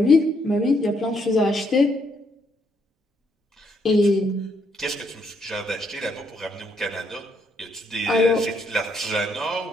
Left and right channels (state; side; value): normal; both; correlation 0.73